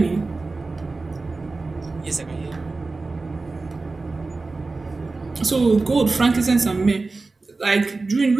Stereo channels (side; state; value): left; quieter; 3.7 dB